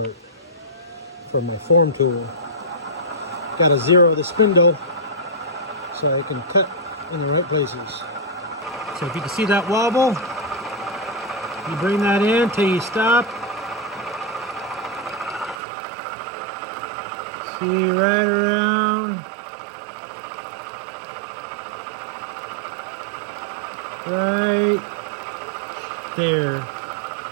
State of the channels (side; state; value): left; drops out; at 15.6 s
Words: from my form tool. Got to zero the spindle so I can cut in the right places. So if you can see that wobble, you bring that in till you stop. See right around. Right there